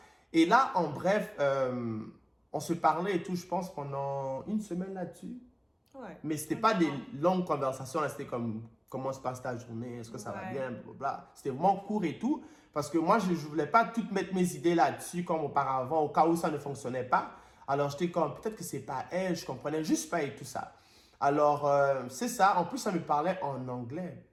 Et là, en bref, on se parlait et tout, je pense, pendant une semaine là-dessus. Ouais. Mais ce n'était pas des longues conversations, c'était comme comment se passe ta journée, est-ce que ça va bien, blablabla. C'était vraiment court et tout, parce que moi, je ne voulais pas toutes mettre mes idées là-dessus comme auparavant, au cas où ça ne fonctionnait pas. Alors, j'étais comme, peut-être que c'est pas elle, je comprenais juste pas et tout ça. Alors, c'est ça. En plus, ça me parlait en anglais.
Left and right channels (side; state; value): both; identical; correlation 1.00